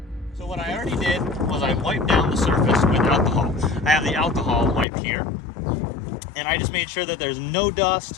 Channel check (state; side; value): drops out; right; at 4.9 s